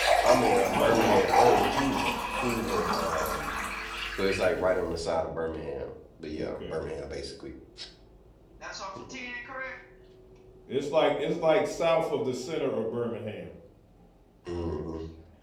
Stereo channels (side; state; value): both; identical; correlation 1.00